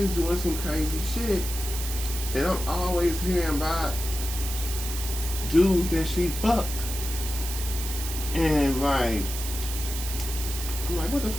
doing some crazy shit. And I'm always hearing about dudes that she fucked. And like, I'm like, what the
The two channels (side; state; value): right; noise; hiss, 7 dB below the sound